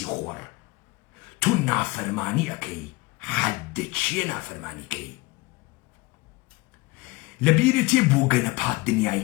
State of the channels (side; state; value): right; quieter; 23.3 dB